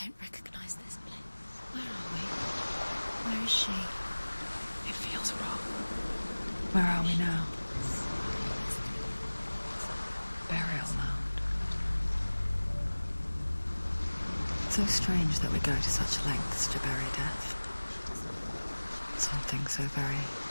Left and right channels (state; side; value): inverted; both; correlation -1.00